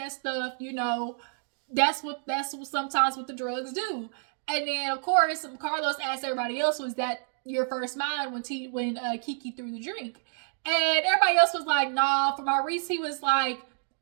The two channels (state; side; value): silent; left; digital silence